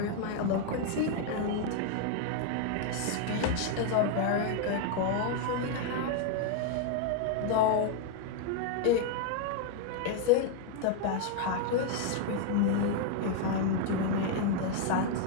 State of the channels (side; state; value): both; different; correlation 0.00